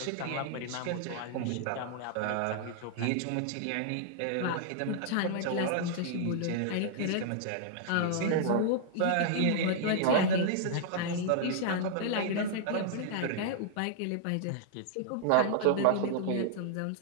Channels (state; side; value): different; both; correlation -0.01